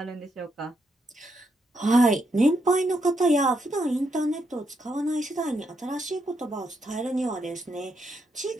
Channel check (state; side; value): normal; both; correlation 0.79